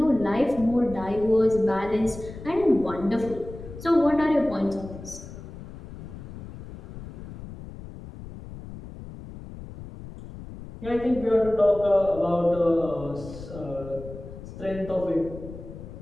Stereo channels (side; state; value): left; noise; rumble, 13 dB below the sound